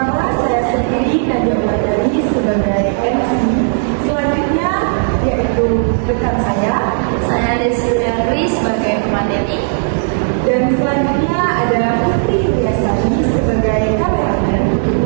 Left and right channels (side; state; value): left; silent; digital silence